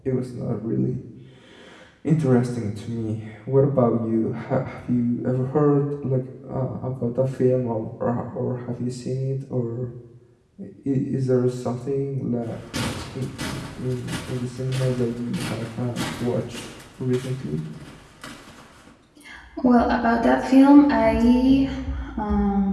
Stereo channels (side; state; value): both; identical; correlation 1.00